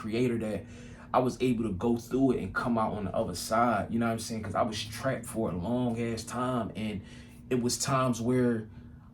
that I was able to go through it and come out on the other side. You know what I'm saying? Because I was trapped for a long ass time, and it was times where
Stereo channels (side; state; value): both; identical; correlation 1.00